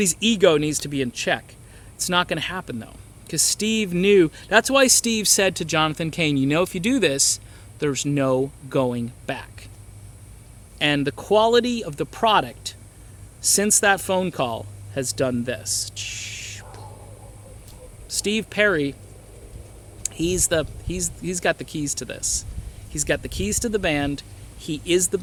ego needs to be in check. It's not going to happen, though. Because Steve knew. That's why Steve said to Jonathan Cain, if you do this, there's no going back. And the quality of the product since that phone call has done this. Steve Perry, he's got the keys to this. He's got the keys to the band. He is the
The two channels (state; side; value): identical; both; correlation 1.00